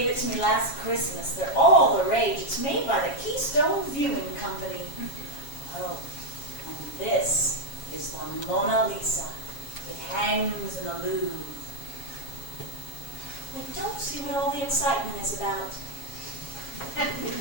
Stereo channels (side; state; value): right; late; 7.3 ms